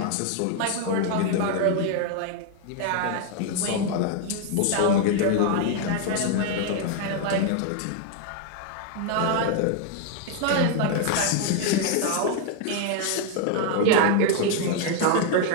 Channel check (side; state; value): both; different; correlation 0.00